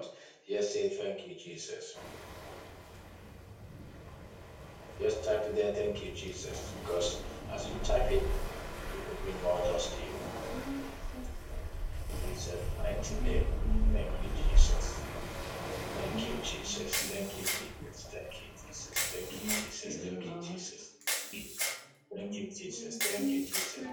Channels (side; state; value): both; identical; correlation 1.00